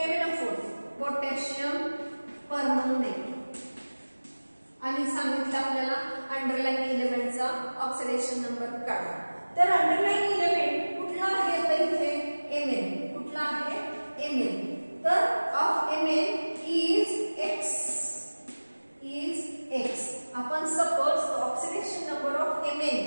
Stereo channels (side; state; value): both; inverted; correlation -1.00